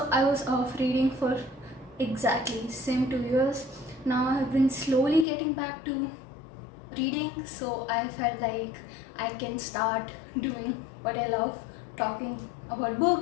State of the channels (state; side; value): drops out; right; at 5.2 s